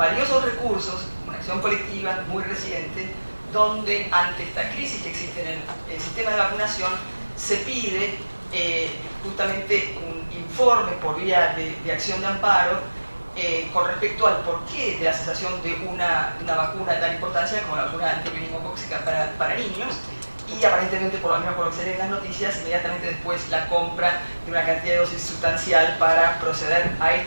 recursos, una acción colectiva muy reciente, donde ante esta crisis que existe en el sistema de vacunación, se pide justamente un informe por vía de acción de amparo con respecto al porqué de la cesación de una vacuna de tal importancia como la vacuna antimeningocócica para niños, y aparentemente, por lo menos por lo que se lee en las noticias, inmediatamente después la compra de una cantidad de dosis sustancial para proceder a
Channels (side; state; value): both; inverted; correlation -1.00